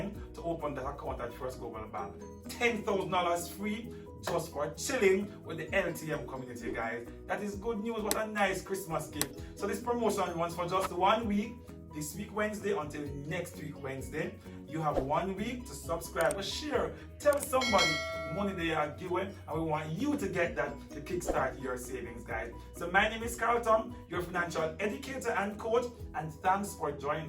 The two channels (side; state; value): both; identical; correlation 1.00